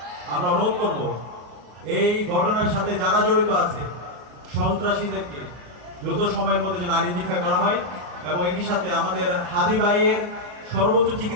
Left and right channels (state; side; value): late; left; 33 ms